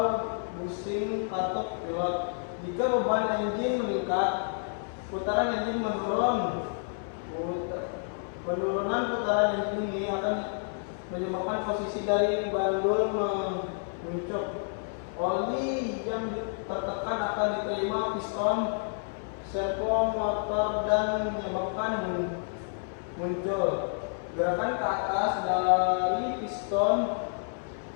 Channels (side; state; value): right; silent; 58 dB below the other